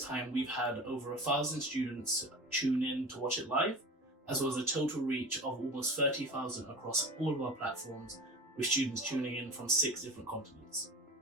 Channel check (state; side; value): normal; both; correlation 0.34